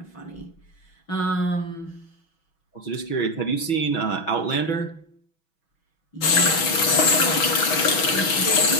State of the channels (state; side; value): late; right; 6.1 ms